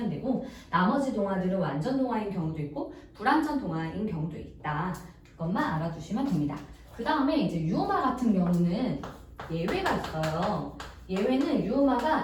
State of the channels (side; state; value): both; identical; correlation 1.00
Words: 되고 나머지 동화들은 완전 동화인 경우도 있고 불완전 동화인 경우도 있다. 그것만 알아두시면 됩니다. 그 다음에 이제 유음화 같은 경우는 예외가 있어요. 예외는